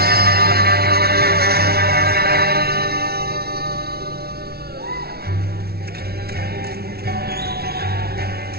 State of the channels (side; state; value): left; late; 0.45 ms